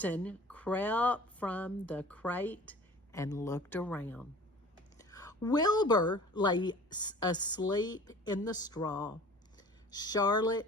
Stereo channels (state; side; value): normal; both; correlation 0.44